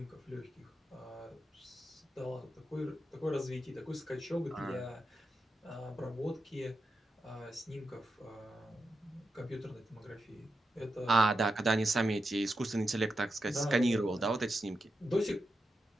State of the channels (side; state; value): both; normal; correlation 0.88